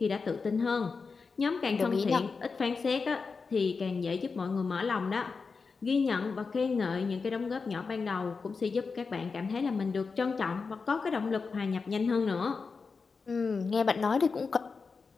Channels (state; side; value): quieter; right; 4.8 dB